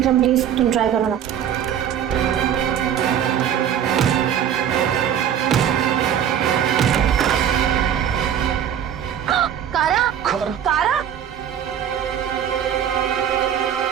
प्लीज तुम ट्राई करो ना। कारा, कारा,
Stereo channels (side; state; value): left; quieter; 9.4 dB